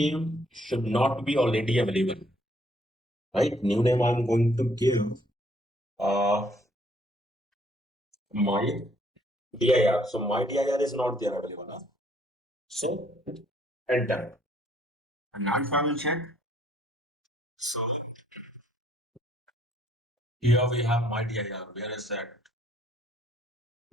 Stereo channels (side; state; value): both; normal; correlation 0.66